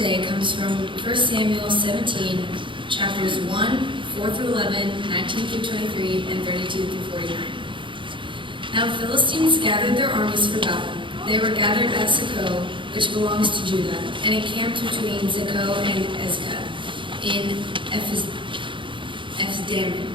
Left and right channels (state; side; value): late; left; 0.24 ms